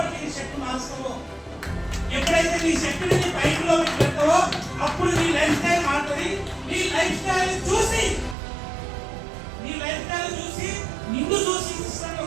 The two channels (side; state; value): left; drops out; at 8.3 s